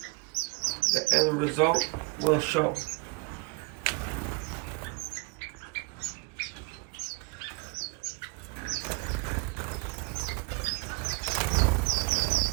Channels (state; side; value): quieter; left; 28.9 dB